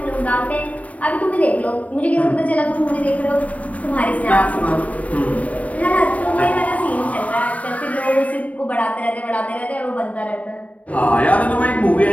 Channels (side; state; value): right; late; 0.069 ms